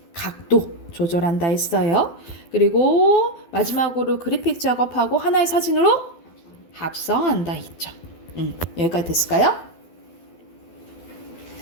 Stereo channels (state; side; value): late; right; 12 ms